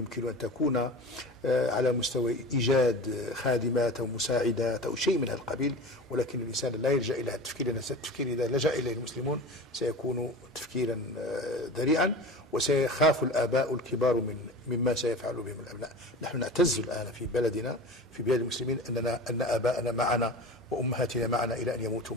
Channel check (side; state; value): both; normal; correlation 0.33